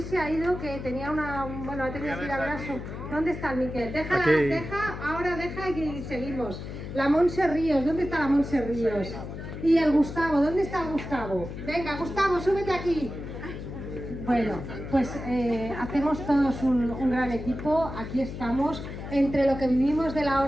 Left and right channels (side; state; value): left; noise; hum, 9 dB below the sound